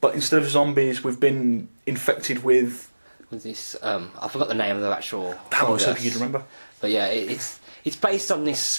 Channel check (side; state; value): both; inverted; correlation -1.00